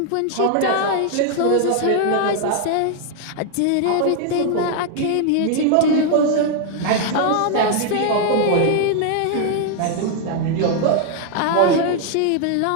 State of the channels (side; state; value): both; different; correlation 0.00